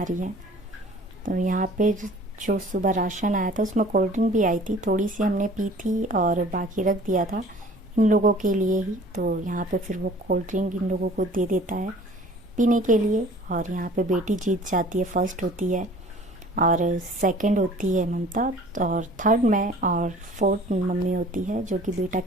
रही है। तो यहाँ पे जो सुबह राशन आया था उसमें कोल्ड ड्रिंक भी आई थी, थोड़ी सी हमने पी थी और बाकी रख दिया था इन लोगों के लिए ही। तो यहाँ पे फिर वो कोल्ड ड्रिंक इन लोगों को दे देता है पीने के लिए। और यहाँ पे बेटी जीत जाती है, फर्स्ट होती है और सेकंड होती है ममता, और थर्ड मैं, और फोर्थ मम्मी होती है, जो कि बेटा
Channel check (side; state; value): both; normal; correlation 0.49